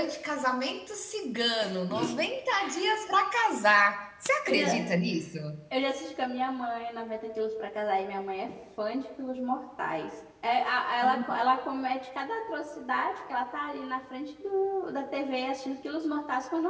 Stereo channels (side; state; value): both; identical; correlation 1.00